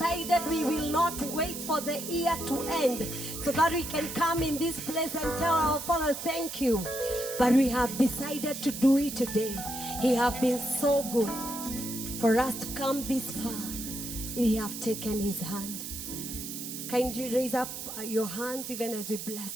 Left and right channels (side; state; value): right; noise; hiss, 8 dB below the sound